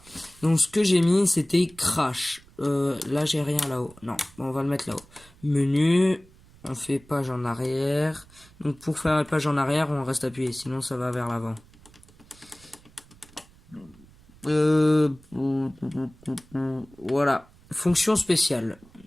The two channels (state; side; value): noise; right; rumble, 26 dB below the sound